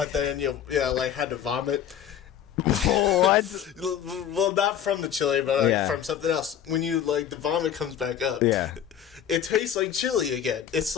then like had to vomit? What? Well, not from the chili, but like from something else. When you like the vomit comes back up, it tastes like chili again. It's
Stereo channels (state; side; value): quieter; right; 9.6 dB